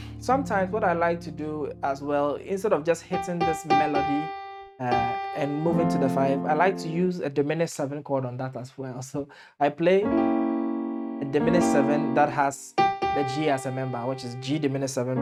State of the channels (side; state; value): both; identical; correlation 1.00